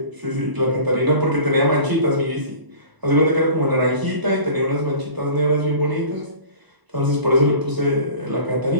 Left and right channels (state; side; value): late; left; 1.0 ms